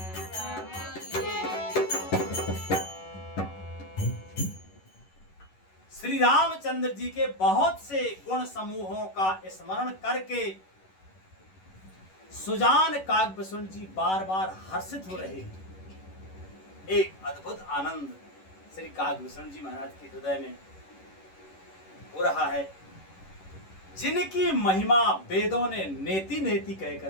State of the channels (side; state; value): right; late; 11 ms